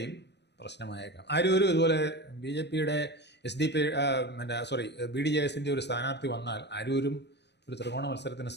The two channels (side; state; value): right; late; 0.50 ms